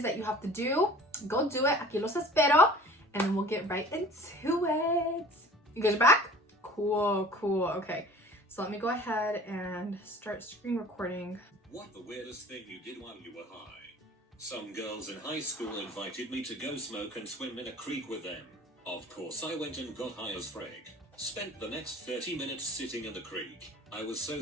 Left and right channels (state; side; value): normal; both; correlation 0.45